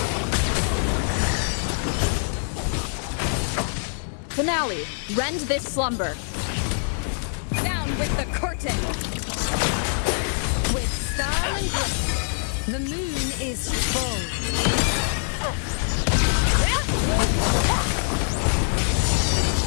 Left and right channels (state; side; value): silent; right; digital silence